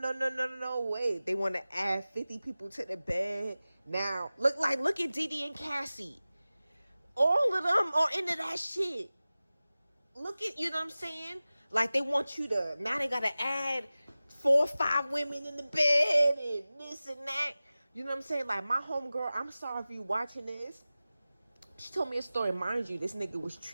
way. They want to add 50 people to the bed. Now, look at Didi and Cassie. All of them are into that shit. Look at, you know what I'm saying? Like, they want you to, now they got to add 4 or 5 women in the bed and this and that. You know what I'm saying? Like, my homegirl, I'm sorry if you watching this, She told me a story. Mind you, this nigga was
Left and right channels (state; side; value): inverted; both; correlation -0.97